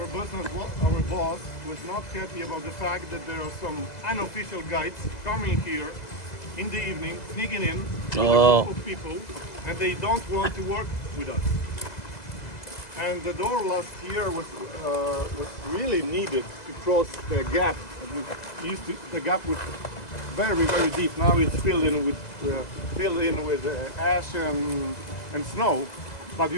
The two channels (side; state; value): right; late; 2.0 ms